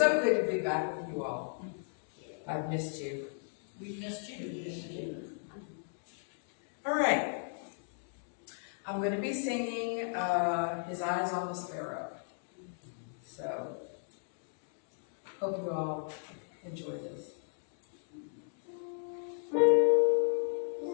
good to be back with you all. I've missed you. We've missed you. All right. I'm going to be singing His Eyes on the Sparrow. So, hope you all enjoy this.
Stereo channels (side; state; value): right; silent; digital silence